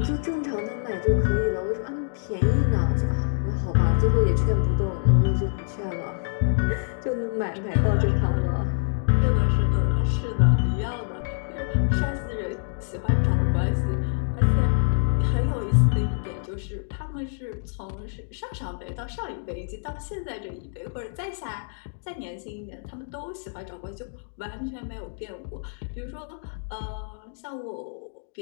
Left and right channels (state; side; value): silent; right; digital silence